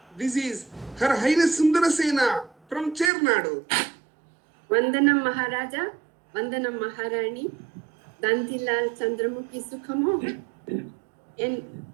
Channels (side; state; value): left; drops out; at 3.1 s